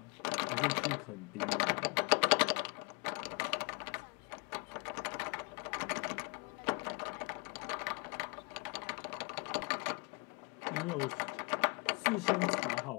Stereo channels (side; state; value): right; quieter; 32.4 dB